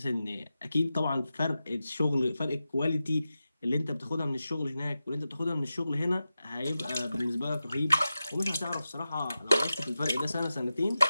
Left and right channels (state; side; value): inverted; both; correlation -0.92